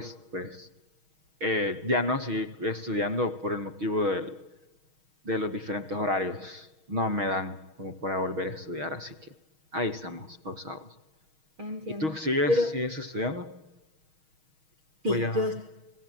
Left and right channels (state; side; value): late; left; 6.3 ms